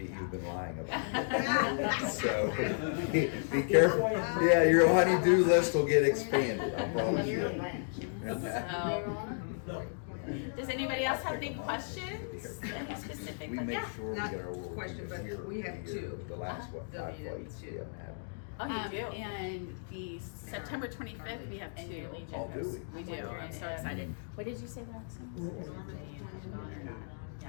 you've been lying about. So be careful. Yeah, your honey-do list will get expanded. I promise you. Does anybody else have any questions? Any specific? We Like, make yeah. sure we Not get our world question, but here we have the 2. The last what, 5 flights we W2. haven't had. Oh, you do? And the September 25th, we have 2. Oh, do we? We do. I'm so excited. What did you say last time?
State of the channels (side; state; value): right; silent; digital silence